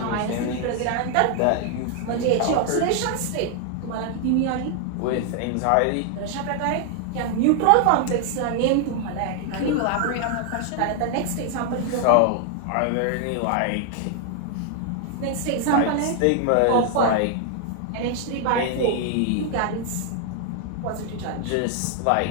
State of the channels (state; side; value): different; both; correlation 0.00